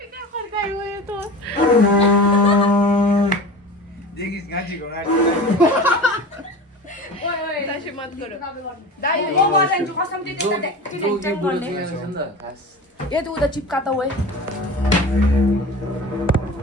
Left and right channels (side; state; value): both; normal; correlation 0.33